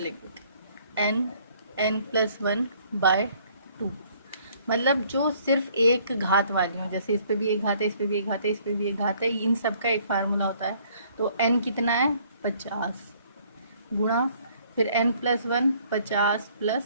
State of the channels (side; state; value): both; inverted; correlation -0.61